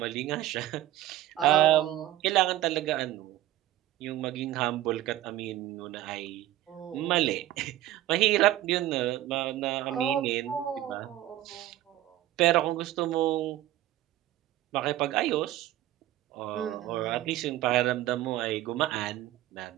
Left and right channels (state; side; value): quieter; left; 14.3 dB